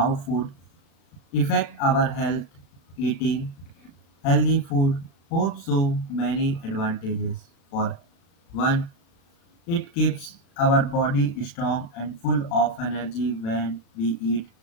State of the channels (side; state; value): right; late; 36 ms